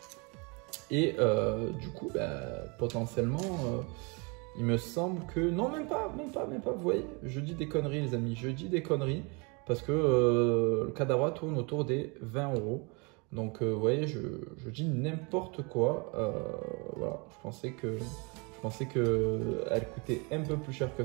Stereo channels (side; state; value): left; quieter; 30.6 dB